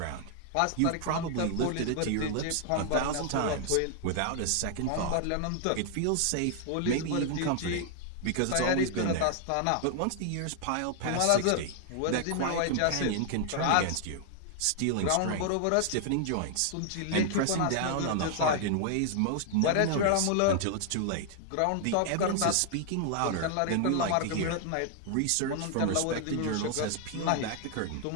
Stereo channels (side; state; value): both; different; correlation 0.00